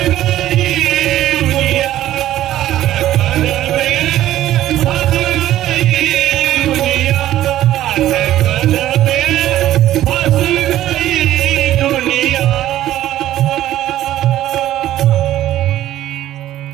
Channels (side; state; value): left; quieter; 13.3 dB